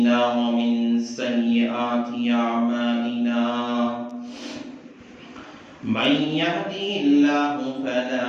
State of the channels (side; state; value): both; identical; correlation 1.00